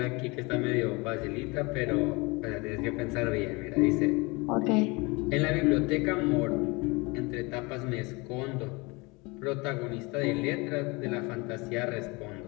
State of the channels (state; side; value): quieter; right; 26.3 dB